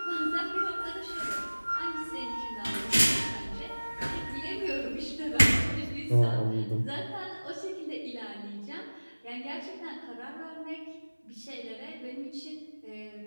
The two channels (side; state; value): both; inverted; correlation -1.00